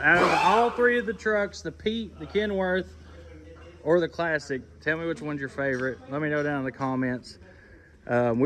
of all 3 of the trucks, the Pete, the Kenworth, or the Classic, tell me which one's your favorite. Let me know down in the comments.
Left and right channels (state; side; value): identical; both; correlation 1.00